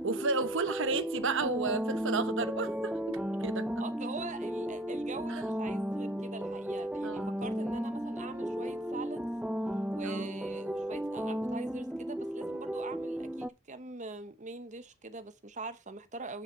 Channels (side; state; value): both; normal; correlation 0.51